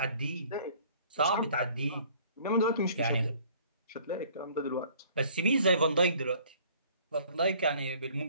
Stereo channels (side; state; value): both; inverted; correlation -0.55